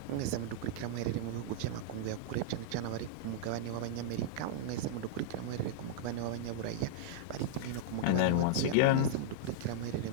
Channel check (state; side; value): different; both; correlation -0.02